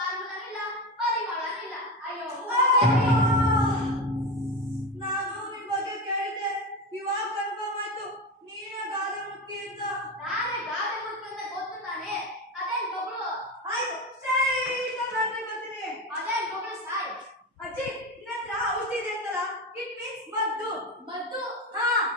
ನಾನು ನಿನ್ ಬಗ್ಗೆ ಕೇಳಿದ್ದೆ, ಇವಾಗ ಕನ್ಫರ್ಮ್ ಆಯ್ತು ನೀನೇ ಗಾದೆ ಮುಕ್ಕಿ ಅಂತ. ಆಯ್ತು, ಸ್ಟ್ರೈಟ್ ಆಗಿ ಬರ್ತೀನಿ. ಅಜ್ಜಿ, ನಿನ್ನ ಹತ್ರ ಔಷಧಿ ಇದೆ ಅಂತಲ್ಲ? ಇಟ್ ಮೀನ್ಸ್ ಮದ್ದು. ಮದ್ದು ಹಾ,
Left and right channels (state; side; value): normal; both; correlation 0.20